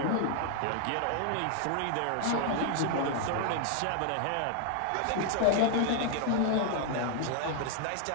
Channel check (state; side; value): different; both; correlation 0.00